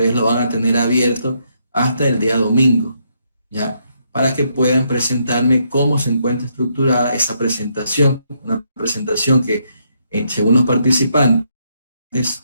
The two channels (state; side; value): inverted; both; correlation -0.76